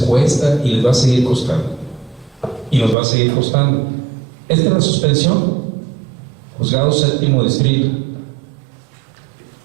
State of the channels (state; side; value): drops out; left; at 3.0 s